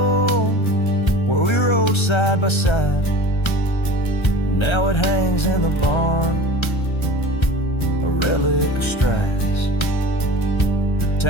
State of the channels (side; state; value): right; late; 1.3 ms